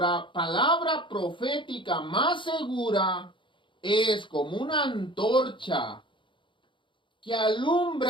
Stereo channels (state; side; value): late; right; 0.24 ms